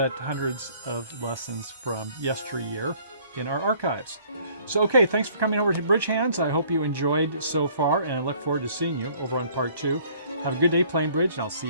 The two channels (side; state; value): both; inverted; correlation -0.57